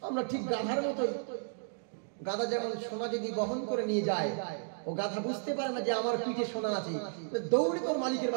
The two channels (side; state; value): left; silent; digital silence